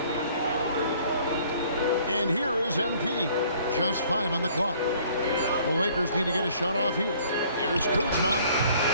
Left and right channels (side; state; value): both; inverted; correlation -0.57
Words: And here is MP. Just 5 on the clock. The Lakers need to get a shot off here. Here's Kuzma.